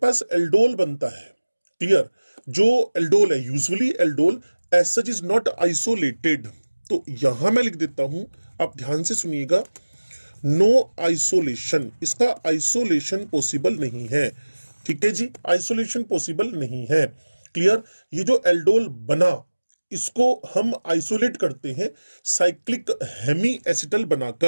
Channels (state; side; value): inverted; both; correlation -1.00